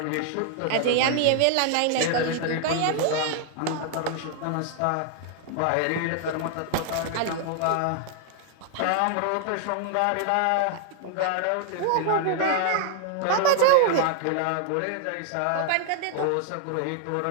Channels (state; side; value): different; both; correlation 0.00